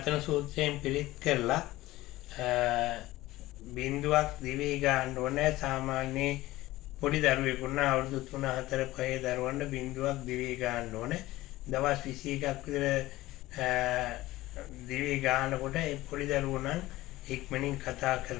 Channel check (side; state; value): right; quieter; 17.5 dB